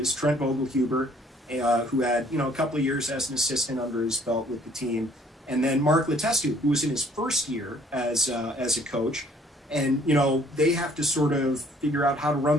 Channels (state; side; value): normal; both; correlation 0.60